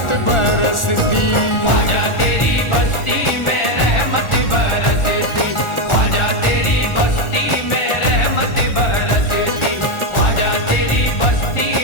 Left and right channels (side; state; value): right; late; 1.4 ms